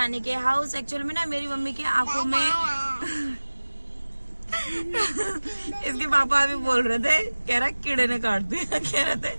के हाउस। एक्चुअल में ना मेरी मम्मी की आंखों में इसके पापा अभी बोल रहे थे, कह रहा कीड़े ने काट दिया, कह रहे थे,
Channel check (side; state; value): both; inverted; correlation -1.00